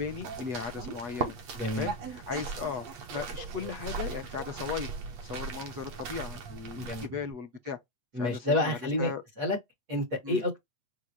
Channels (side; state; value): left; late; 8.3 ms